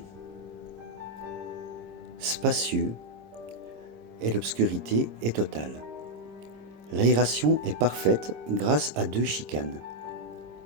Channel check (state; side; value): late; left; 26 ms